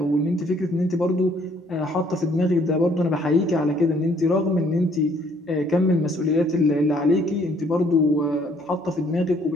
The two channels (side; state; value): both; normal; correlation 0.63